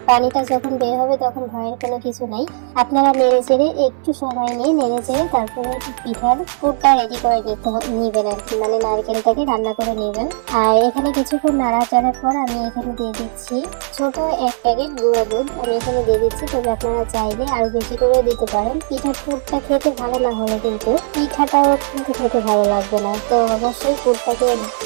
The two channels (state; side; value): silent; left; 62 dB below the other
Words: পানিটা যখন বের হবে তখন ভয়ের কোনো কিছু নাই। আপনারা নেড়ে চেড়ে একটু সময় নিয়ে নেড়ে চেড়ে তারপরে পিঠার পুরটা রেডি করে নিবেন আর কি, মানে নারকেলটাকে রান্না করে নেবেন। আর এখানে কিছুক্ষণ নাড়াচাড়ার পর আমি এখানে দিয়ে দিচ্ছি ছোট 1 প্যাকেট গুঁড়া দুধ। আমি এখানে দিয়ে দিচ্ছি। তবে আপনারা চাইলে আরো বেশি করে দিতে পারেন। পিঠার পুরটা খেতে ভালো না হলে কিন্তু পিঠাটাও কিন্তু খেতে ভালো লাগবে না। তো অবশ্যই পুরটাকে